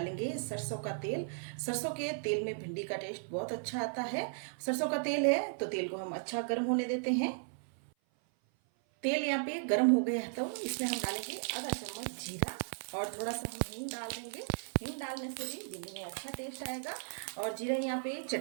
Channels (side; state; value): left; silent; 54 dB below the other